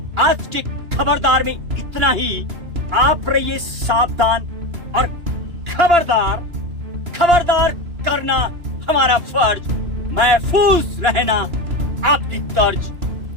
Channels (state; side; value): late; left; 2.9 ms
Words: आज के खबरदार में इतना ही। आप रहिए सावधान और खबरदार। खबरदार करना हमारा फर्ज, महफूज रहना आपकी तर्ज।